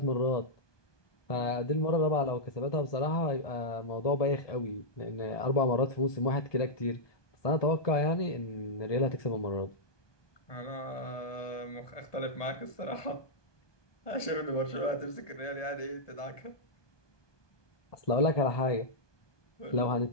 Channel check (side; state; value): right; late; 1.2 ms